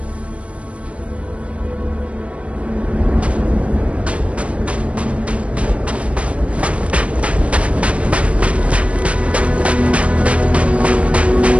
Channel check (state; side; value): late; left; 0.063 ms